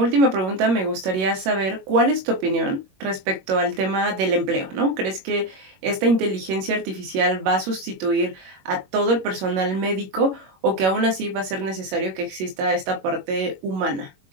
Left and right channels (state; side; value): late; left; 21 ms